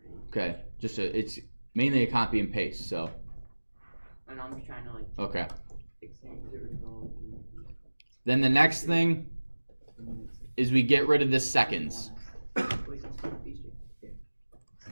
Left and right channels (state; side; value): inverted; both; correlation -1.00